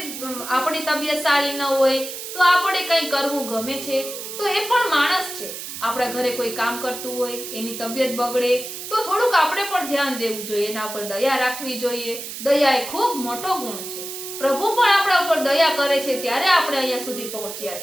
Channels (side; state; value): right; noise; hiss, 9 dB below the sound